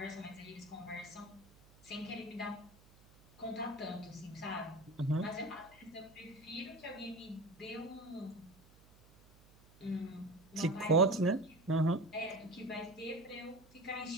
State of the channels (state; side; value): noise; right; hum, 25 dB below the sound